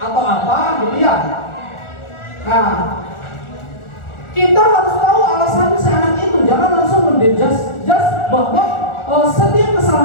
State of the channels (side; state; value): right; late; 1.4 ms